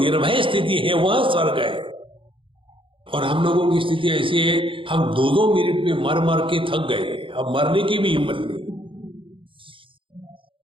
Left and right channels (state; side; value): late; left; 0.25 ms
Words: स्थिति है वह स्वर्ग है। और हम लोगों की स्थिति ऐसी है, हम 2-2 मिनट में मर मर के थक गए, अब मरने की भी हिम्मत नहीं।